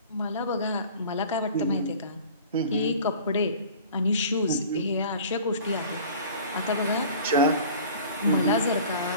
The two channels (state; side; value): inverted; both; correlation -0.43